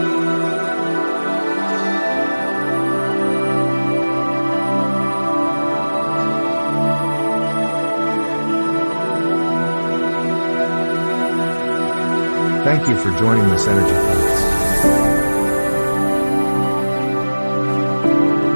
Thank you for joining this energy class.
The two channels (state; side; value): inverted; both; correlation -1.00